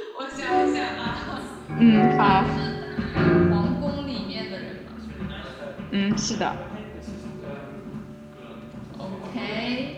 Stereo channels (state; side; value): identical; both; correlation 1.00